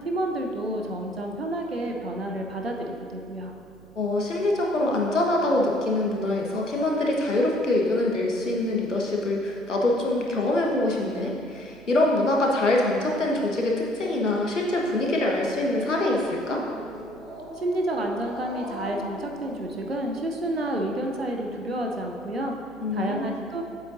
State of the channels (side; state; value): right; noise; hum, 24 dB below the sound